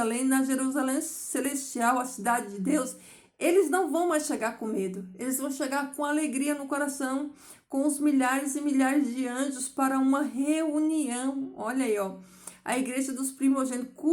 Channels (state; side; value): identical; both; correlation 1.00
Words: na Jerusalém celestial, a cidade de Deus, eles não vão mais chegar com medo. Eles vão chegar com alegria no coração, com os milhares e milhares de anjos para uma reunião. Olha aí, ó. A igreja dos primogênitos,